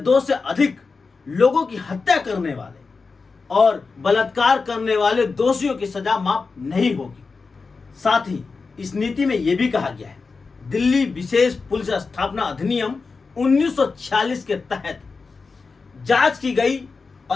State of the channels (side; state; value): right; quieter; 4.5 dB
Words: से अधिक लोगों की हत्या करने वाले और बलात्कार करने वाले दोषियों की सजा माफ नहीं होगी। साथ ही इस नीति में यह भी कहा गया है, दिल्ली विशेष पुलिस स्थापना अधिनियम 1946 के तहत जांच की गई